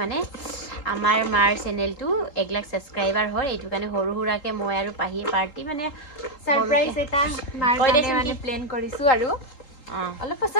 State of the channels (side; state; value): right; late; 3.8 ms